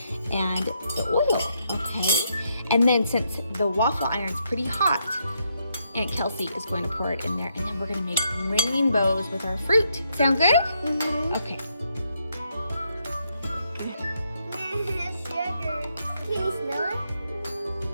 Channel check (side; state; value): both; inverted; correlation -0.77